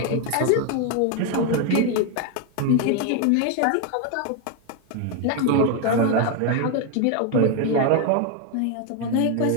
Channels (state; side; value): different; both; correlation 0.01